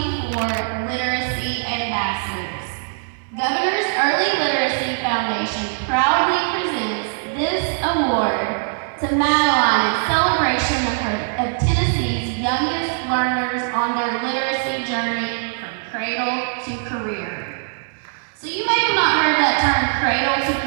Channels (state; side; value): silent; left; 65 dB below the other